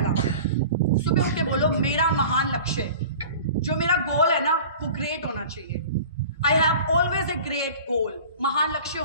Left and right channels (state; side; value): inverted; both; correlation -0.40